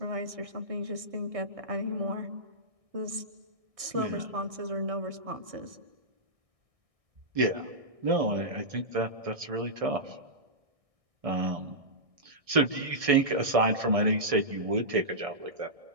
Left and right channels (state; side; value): late; left; 1.6 ms